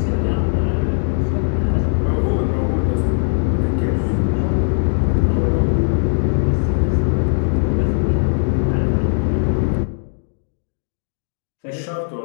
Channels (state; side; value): silent; right; digital silence